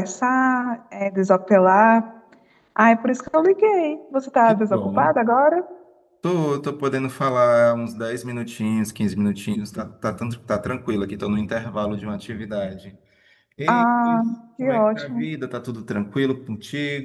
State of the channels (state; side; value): identical; both; correlation 1.00